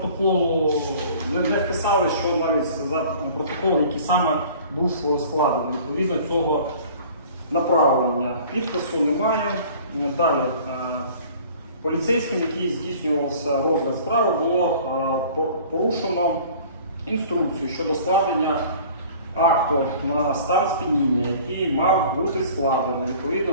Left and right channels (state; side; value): inverted; both; correlation -0.48